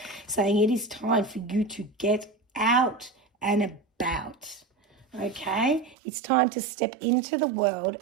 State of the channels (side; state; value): left; drops out; at 6.0 s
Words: saying it is time for you to get out and about. Okay, it's time to step into the world